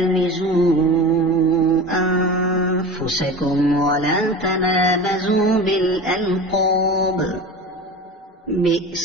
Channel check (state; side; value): normal; both; correlation 0.31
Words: أنفسكم ولا تنابزوا بالألقاب